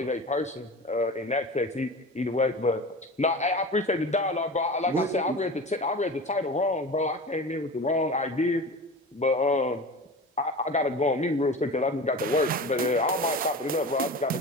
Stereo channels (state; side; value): normal; both; correlation 0.32